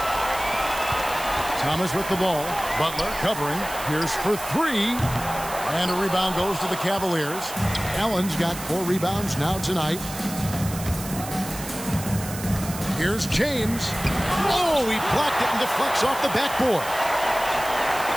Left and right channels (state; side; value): noise; right; hiss, 11 dB below the sound